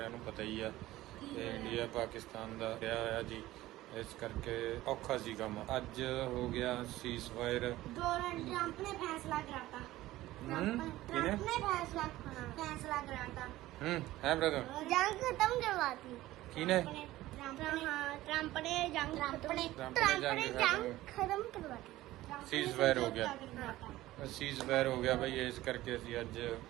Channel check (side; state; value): left; quieter; 16.4 dB